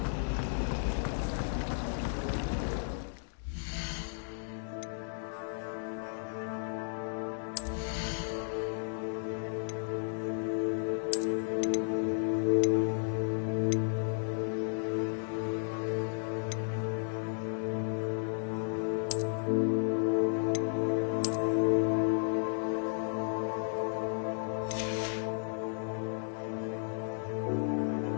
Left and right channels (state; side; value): silent; right; digital silence